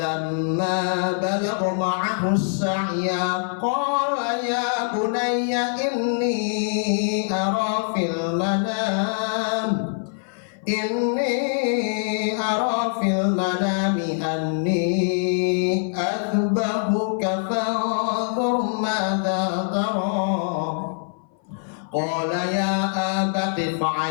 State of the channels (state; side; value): silent; right; 58 dB below the other